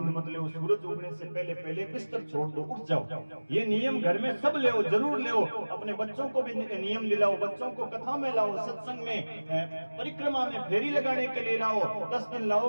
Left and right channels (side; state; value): both; inverted; correlation -1.00